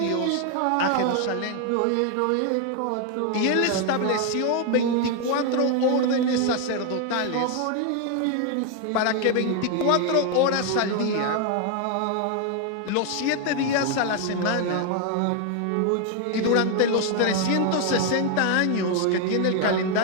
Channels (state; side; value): different; both; correlation 0.01